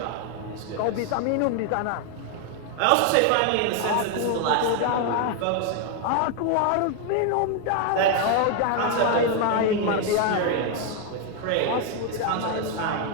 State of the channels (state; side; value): different; both; correlation 0.01